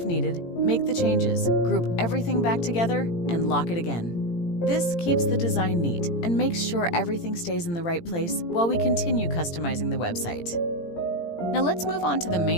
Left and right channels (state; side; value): late; right; 18 ms